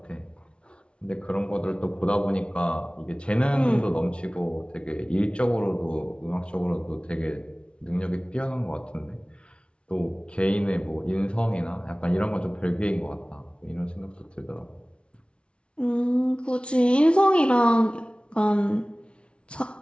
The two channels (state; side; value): late; right; 0.059 ms